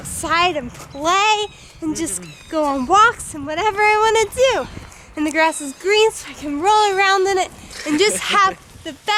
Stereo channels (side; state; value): both; identical; correlation 1.00